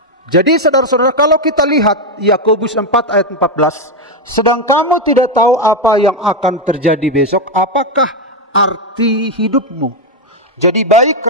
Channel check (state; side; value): normal; both; correlation 0.05